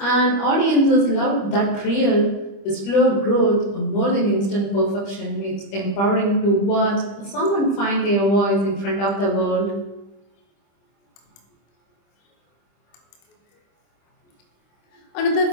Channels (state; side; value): late; right; 25 ms